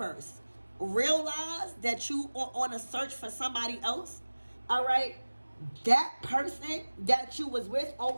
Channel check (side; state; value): both; inverted; correlation -1.00